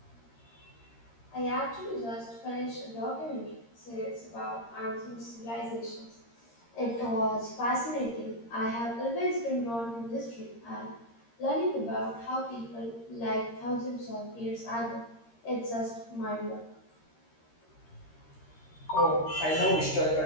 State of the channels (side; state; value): right; late; 13 ms